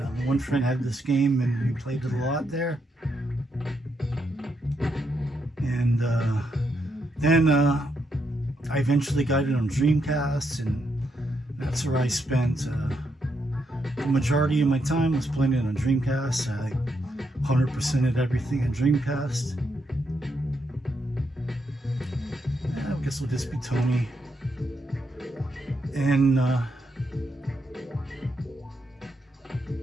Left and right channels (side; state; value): both; normal; correlation 0.79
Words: one friend had this game, and we played it a lot there. And then I eventually got it on Dreamcast, and that's where I spent the majority of my time was playing it on Dreamcast. I 100%ed everything on Dreamcast. Yeah, I guess we'll just be Tony. And that